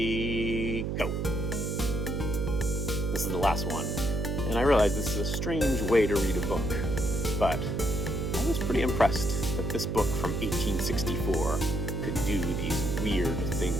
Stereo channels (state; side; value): noise; right; hum, 1 dB below the sound